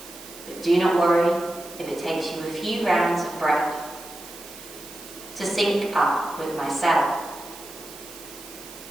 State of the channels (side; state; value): right; noise; hiss, 16 dB below the sound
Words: But do not worry if it takes you a few rounds of breath to sync up with myself.